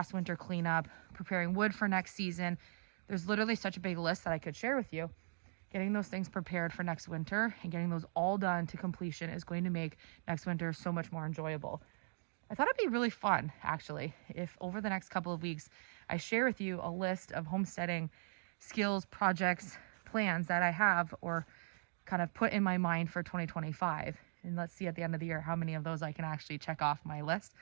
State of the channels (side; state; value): left; silent; digital silence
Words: winter cleanup, preparing wood for next season. There's literally such a big list that I could share with you. Getting those things prepared for next winter and getting those all done to completion is going to make next winter so much more enjoyable. I thought it'd be really fun, actually, if over the next couple of weeks, I share with you a list of homesteading skills, projects, plans that I have or kind of put in my mind for 2025. And let's see at the end of the year how many of those I can actually check off my list.